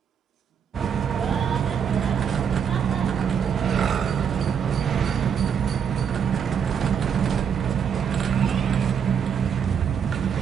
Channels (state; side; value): quieter; left; 7.5 dB